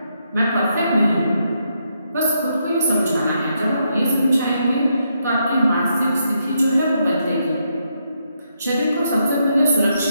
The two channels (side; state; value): both; inverted; correlation -0.78